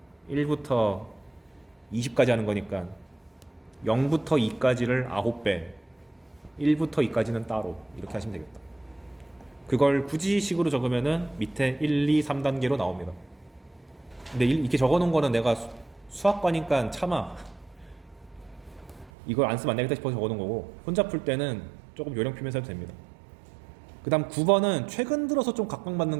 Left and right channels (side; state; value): left; drops out; at 19.1 s